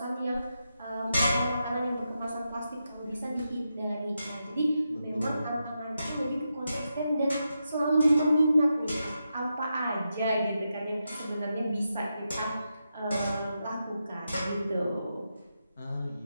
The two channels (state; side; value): inverted; both; correlation -0.86